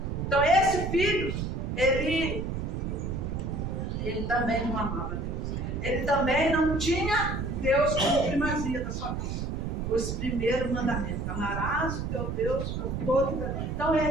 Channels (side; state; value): right; noise; rumble, 3 dB below the sound